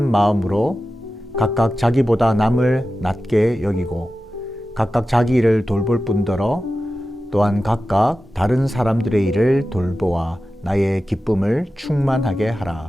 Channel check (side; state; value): both; normal; correlation 0.93